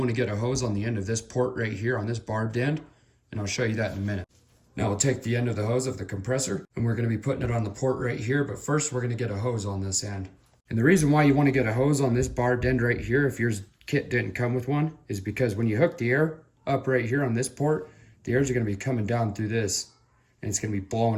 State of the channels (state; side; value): identical; both; correlation 1.00